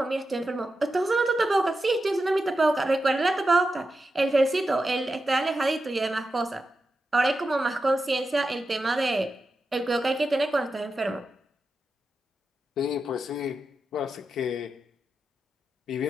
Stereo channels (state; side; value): normal; both; correlation 0.89